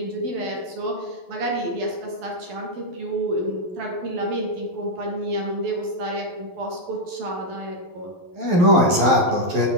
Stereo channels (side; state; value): left; late; 11 ms